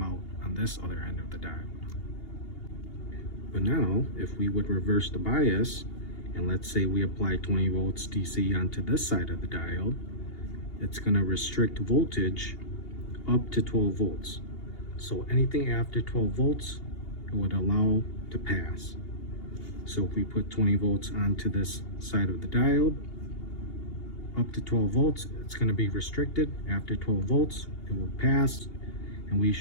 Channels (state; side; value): late; right; 2.8 ms